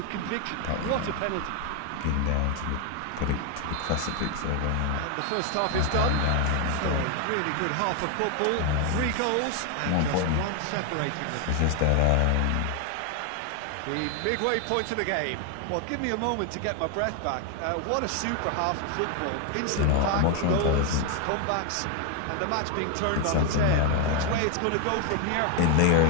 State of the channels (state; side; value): different; both; correlation 0.01